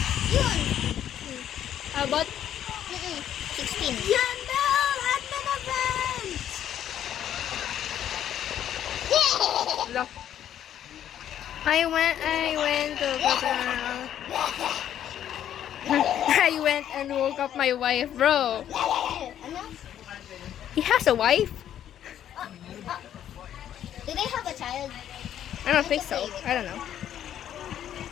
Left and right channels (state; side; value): quieter; right; 10.6 dB